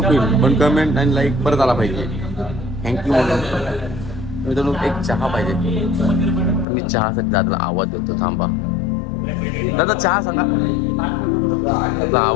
पण कमेंट आणि लाईक परत आला पाहिजे थँक्यू म्हणून मित्रांनो एक चहा पाहिजे तर मी चहासाठी दादाला आवाज देतो थांबा दादा चहा सांगा त्याचा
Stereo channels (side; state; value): right; drops out; at 6.7 s